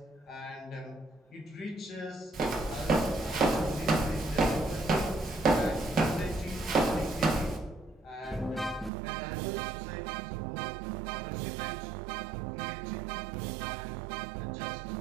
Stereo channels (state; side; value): drops out; left; at 8.9 s